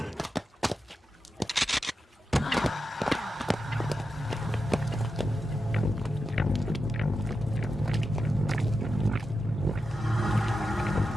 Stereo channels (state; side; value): normal; both; correlation 0.89